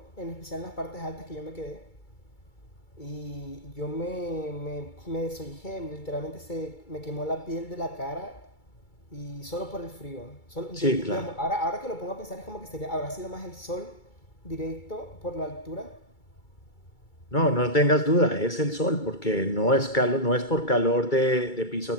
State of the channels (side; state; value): right; late; 2.3 ms